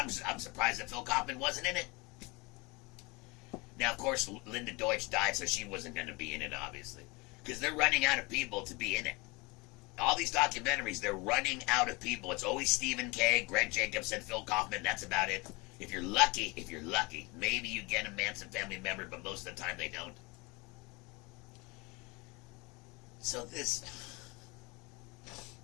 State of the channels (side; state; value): right; quieter; 26.4 dB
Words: surprised that Phil Kaufman wasn't in it. Now, of course, Linda Deutsch died, so she wasn't going to be in it, obviously, because they're running out of people to be in it. All these documentaries, they're running out of people. It's always Stephen Kay, Greg Jacobson, Phil Kaufman. That's about it. If you're lucky, maybe you get a Manson family member, but most of the time they don't. So